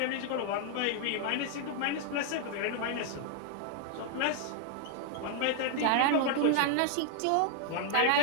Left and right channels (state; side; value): different; both; correlation 0.00